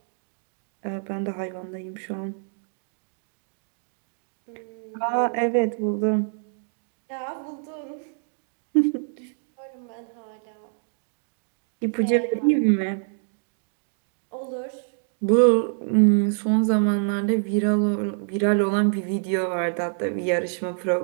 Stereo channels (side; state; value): left; silent; 58 dB below the other